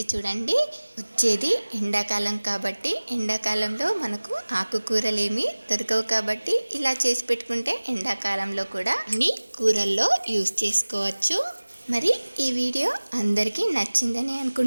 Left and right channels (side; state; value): both; inverted; correlation -1.00